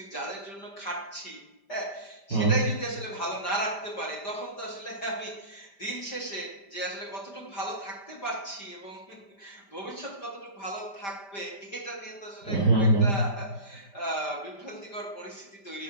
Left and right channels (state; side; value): late; right; 5.0 ms